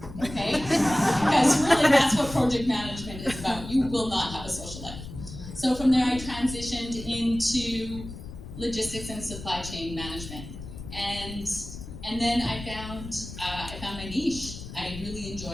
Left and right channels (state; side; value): noise; left; rumble, 12 dB below the sound